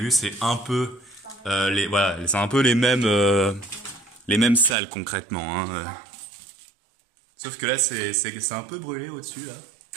vu, c'est un peu... voilà, c'est un peu les mêmes salles, concrètement. Hein. Sauf que là, c'est un peu brûlé au-dessus, là.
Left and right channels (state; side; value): drops out; left; at 4.8 s